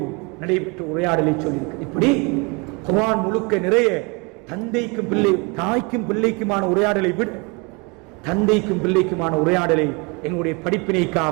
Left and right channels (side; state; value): left; quieter; 29.7 dB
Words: நடைபெற்ற உரையாடலை சொல்லியிருக்கிறது. இப்படி குர்ஆன் முழுக்க நிறைய தந்தைக்கும் பிள்ளை, தாய்க்கும் பிள்ளைக்குமான உரையாடலை விட தந்தைக்கும் பிள்ளைக்குமான உரையாடலை எங்களுடைய